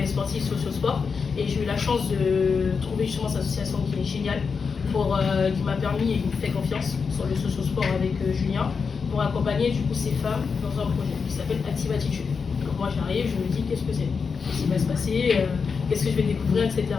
sportif, socio-sport. Et j'ai eu la chance de trouver justement cette association qui est géniale, qui m'a permis et qui me fait confiance sur le socio-sport avec Julien, pour accompagner du coup ces femmes dans un projet qui s'appelle Active Attitude. Donc moi j'arrive, je me dis qu'est-ce que c'est, qu'est-ce qui va se passer, qu'est-ce que je vais découvrir, etc.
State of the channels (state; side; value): quieter; right; 5.5 dB